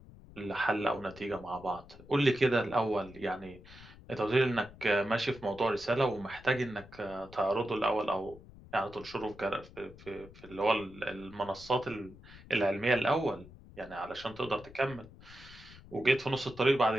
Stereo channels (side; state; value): left; noise; rumble, 19 dB below the sound